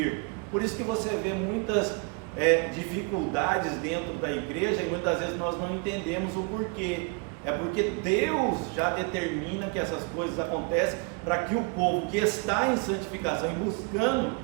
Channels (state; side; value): quieter; left; 31.9 dB